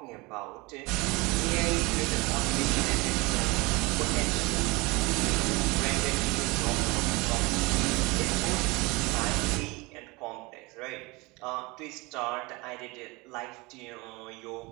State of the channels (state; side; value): quieter; left; 24.8 dB